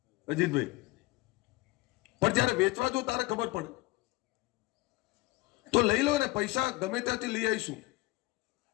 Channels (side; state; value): right; quieter; 20.9 dB